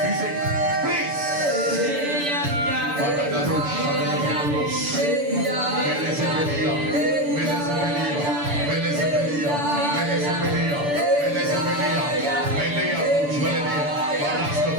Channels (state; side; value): late; left; 6.9 ms